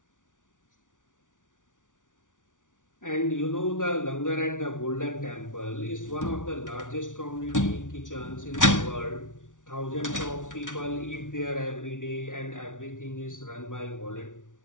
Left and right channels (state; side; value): late; right; 0.87 ms